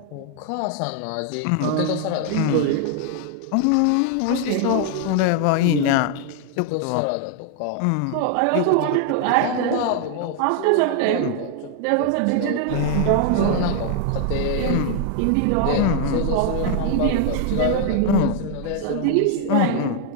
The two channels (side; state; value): both; different; correlation 0.00